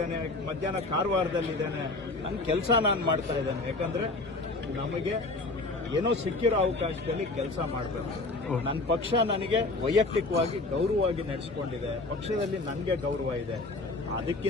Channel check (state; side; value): quieter; right; 3.2 dB